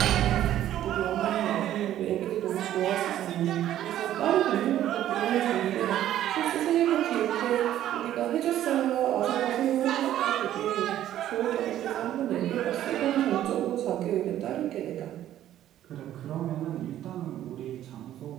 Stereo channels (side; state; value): left; quieter; 12.2 dB